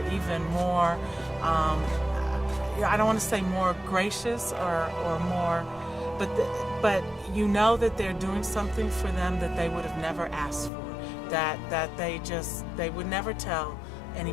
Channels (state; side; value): drops out; right; at 10.7 s